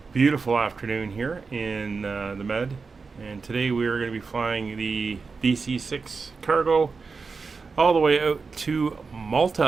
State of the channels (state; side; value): quieter; left; 4.7 dB